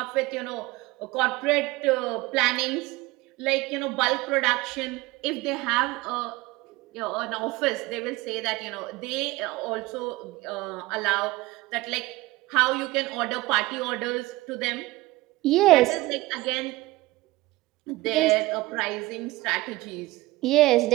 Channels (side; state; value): left; quieter; 20.1 dB